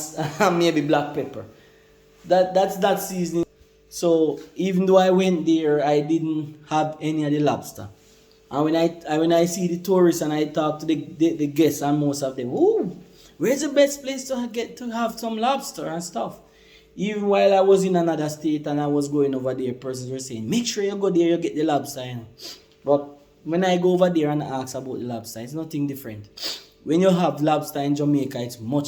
maybe black pepper. That's seasoning. So even though I went there, I didn't have any of the lobster. And when I see the tourists and I talk to the guests, and most of them, ooh, where's the best place to get to have some lobster and stuff? Even while I was in another state and I was going over there, persons were saying, make sure you go there, you get the lobster. But when I go over there and ask about the lobster, it's nothing different. When you have lobster in Jamaica, it's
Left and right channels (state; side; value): identical; both; correlation 1.00